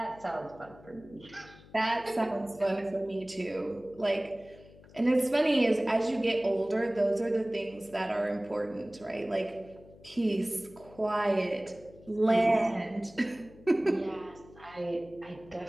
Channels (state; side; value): noise; left; hum, 22 dB below the sound